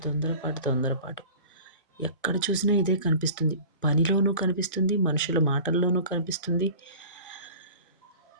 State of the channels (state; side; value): inverted; both; correlation -0.40